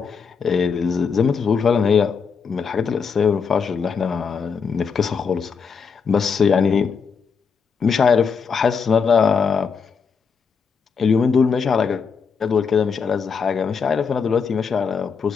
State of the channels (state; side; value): quieter; right; 5.8 dB